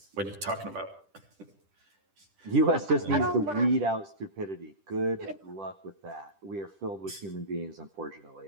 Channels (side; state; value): left; late; 10 ms